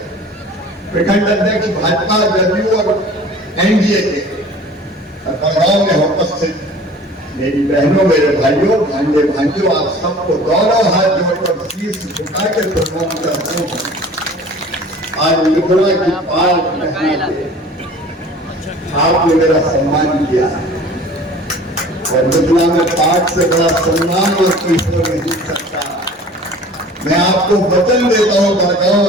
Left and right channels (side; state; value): both; normal; correlation 0.45